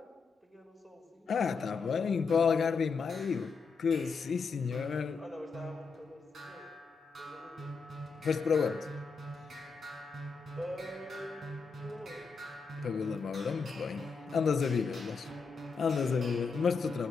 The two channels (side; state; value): right; quieter; 5.0 dB